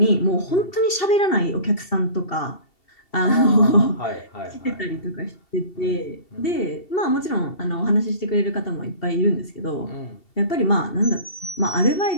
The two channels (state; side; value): late; right; 2.7 ms